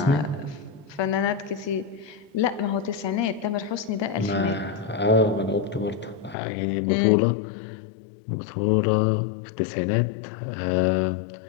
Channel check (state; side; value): drops out; right; at 6.4 s